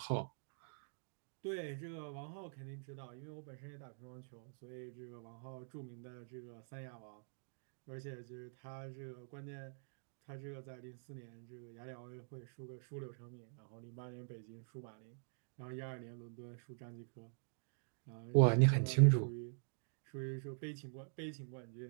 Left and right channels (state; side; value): silent; left; digital silence